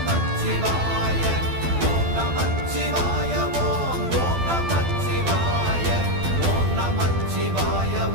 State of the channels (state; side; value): late; left; 12 ms